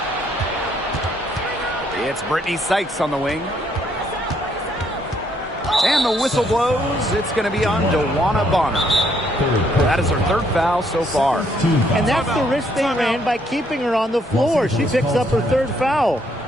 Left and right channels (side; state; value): both; normal; correlation 0.70